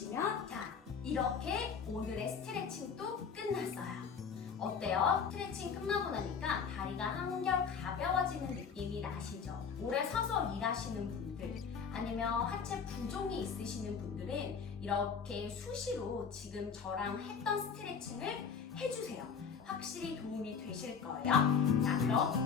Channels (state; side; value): quieter; right; 6.3 dB